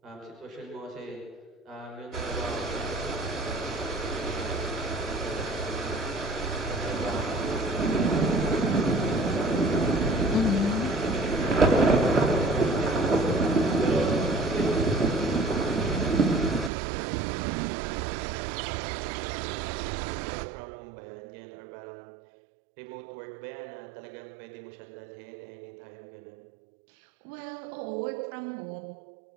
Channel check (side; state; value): left; drops out; at 16.7 s